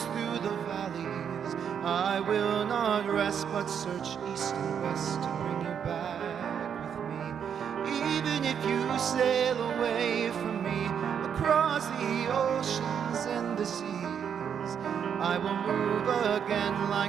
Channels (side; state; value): left; quieter; 7.9 dB